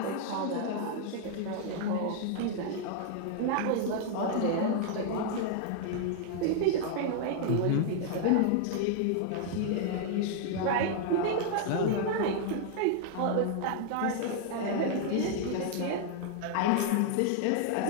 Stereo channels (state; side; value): different; both; correlation 0.00